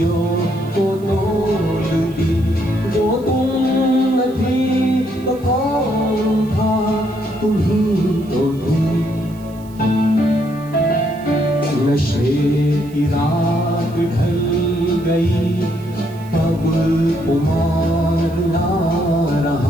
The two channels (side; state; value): right; noise; hiss, 26 dB below the sound